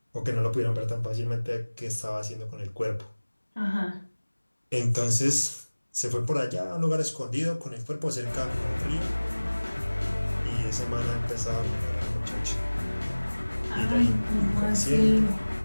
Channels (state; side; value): inverted; both; correlation -1.00